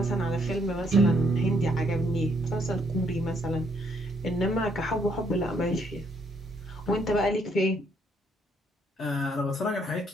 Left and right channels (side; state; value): both; normal; correlation 0.70